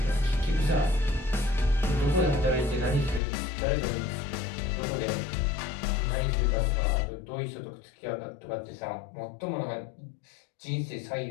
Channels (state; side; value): drops out; right; at 3.2 s